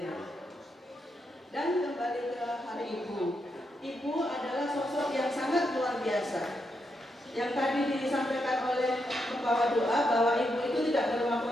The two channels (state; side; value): normal; both; correlation 0.82